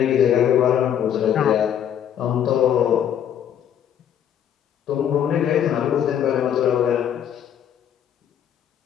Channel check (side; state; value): right; quieter; 9.5 dB